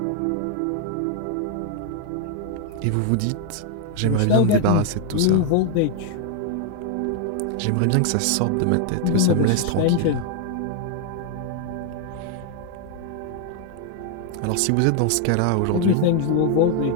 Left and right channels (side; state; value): both; different; correlation 0.00